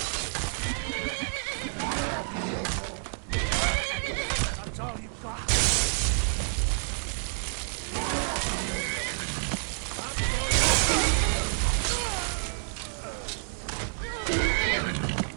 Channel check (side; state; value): left; silent; digital silence